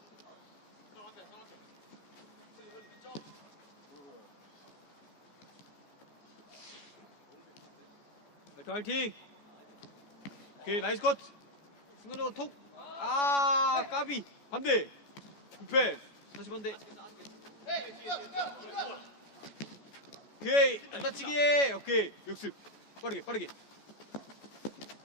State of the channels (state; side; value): late; right; 14 ms